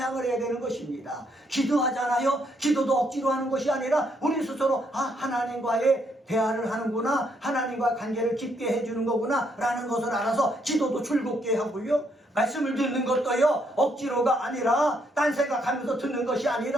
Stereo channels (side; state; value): both; normal; correlation 0.73